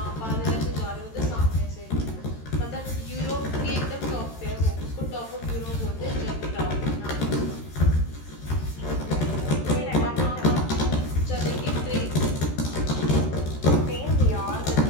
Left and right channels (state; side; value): late; right; 13 ms